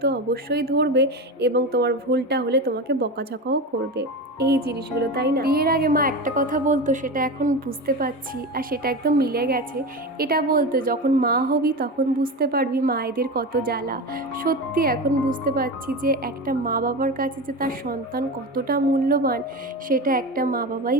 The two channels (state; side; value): normal; both; correlation 0.24